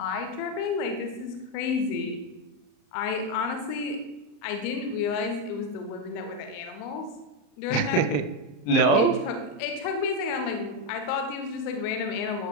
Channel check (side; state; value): right; late; 34 ms